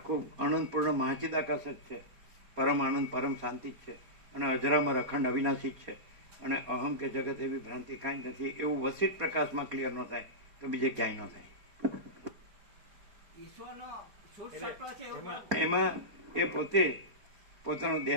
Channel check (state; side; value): late; left; 4.3 ms